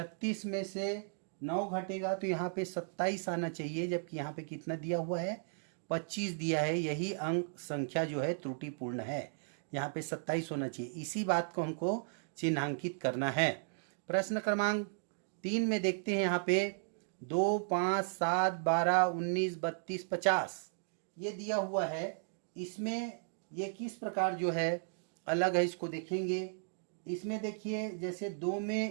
में से 9 घटेगा तो यहाँ पे 27 आना चाहिए, जबकि यहाँ पे कितना दिया हुआ है 25 दिया है। यही अंक संख्या जो है त्रुटिपूर्ण है, यहाँ पे 27 होना चाहिए। इसी बात को हमको चिन्हांकित करना है। प्रश्न क्रमांक 3 में देखते हैं, यहाँ पे 2 5 7 12 19 32 50 ये दिया हुआ है। इसमें ये किस प्रकार जो है अलग है इसको देखेंगे। इसमें देखिए जैसे 2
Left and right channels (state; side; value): silent; left; digital silence